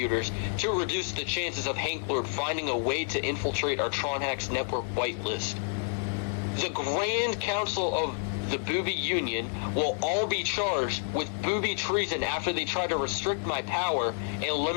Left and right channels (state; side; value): silent; right; digital silence